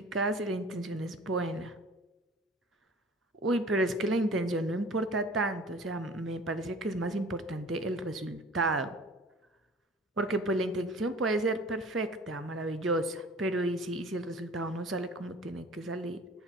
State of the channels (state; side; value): normal; both; correlation 0.45